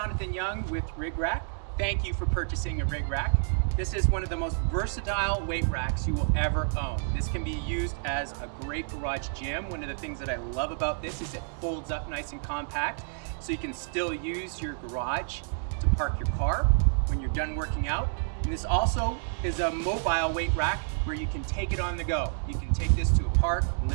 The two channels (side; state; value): left; silent; digital silence